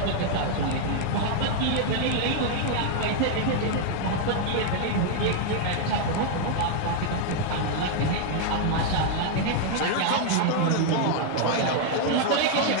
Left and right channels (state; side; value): different; both; correlation 0.00